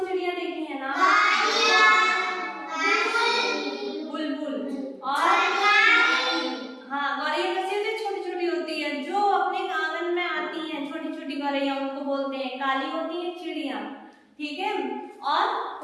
चिड़िया देखी है ना? बुलबुल और हाँ, गौरैया कैसी होती है? छोटी छोटी होती है, जो अपने आंगन में आती हैं। छोटी छोटी गौरैया उनको बोलते हैं। काली होती है चिड़िया, ठीक है। और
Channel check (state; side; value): identical; both; correlation 1.00